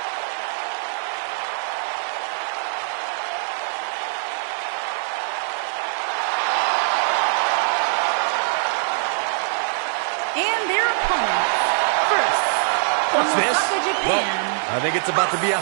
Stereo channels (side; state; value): left; silent; digital silence